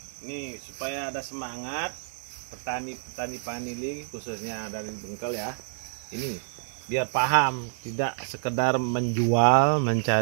Nih supaya ada semangat petani Panili khususnya dari Bengkel ya. Ini biar paham, tidak sekedar menjual,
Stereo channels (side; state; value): left; silent; 59 dB below the other